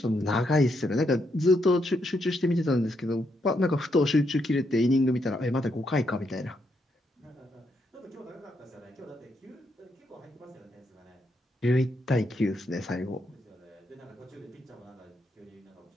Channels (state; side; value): normal; both; correlation 0.78